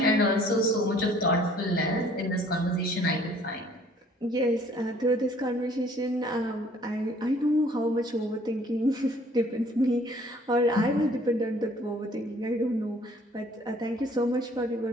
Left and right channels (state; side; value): normal; both; correlation 0.57